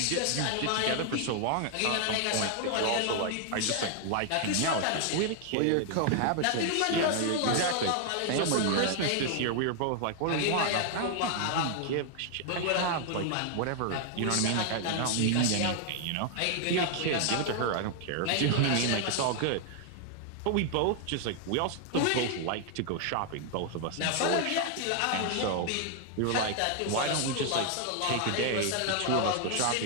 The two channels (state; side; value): different; both; correlation 0.00